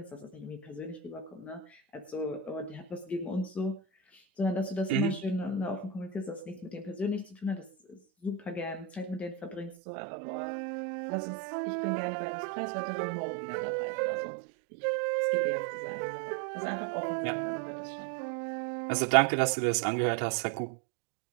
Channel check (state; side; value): drops out; left; at 9.8 s